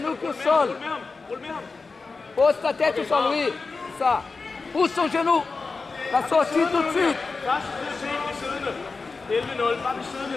au sol. Rul med ham. Pose ta tête au sol, oui. Ça. Pousse ton genou. La sortie tout de suite. Første prioritet, bliv siddende. 11-0. Bare bliv siddende.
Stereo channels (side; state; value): right; quieter; 4.2 dB